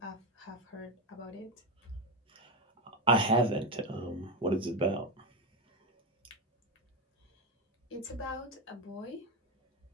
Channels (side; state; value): both; normal; correlation 0.12